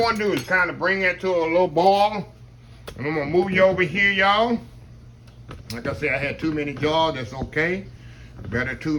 to do is kind of bring that to a little boil. And I'm gonna move you over here, y'all. Like I said, I had too many jars. That's okay. Better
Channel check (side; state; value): both; identical; correlation 1.00